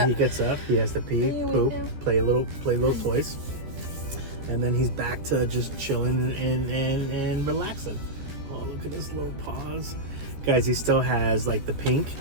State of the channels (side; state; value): left; late; 14 ms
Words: He gets up, he has to pee, Are you poop, awake now? play little toys, and then he's back to just chilling and relaxing. Oh, look at his little paws, guys. He still has like the pink,